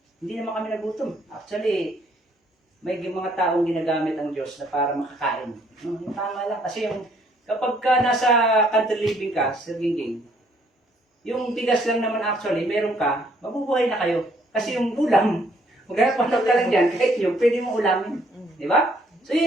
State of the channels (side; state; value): both; normal; correlation 0.66